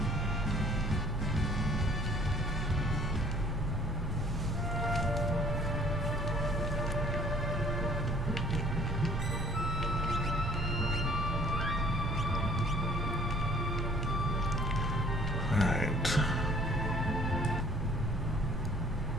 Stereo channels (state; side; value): normal; both; correlation 0.58